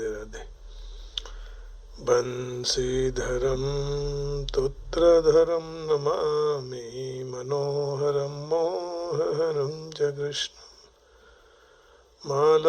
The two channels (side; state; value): both; identical; correlation 1.00